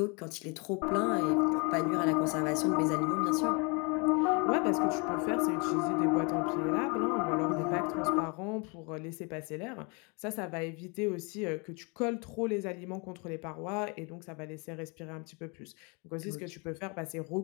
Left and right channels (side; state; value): right; quieter; 31.7 dB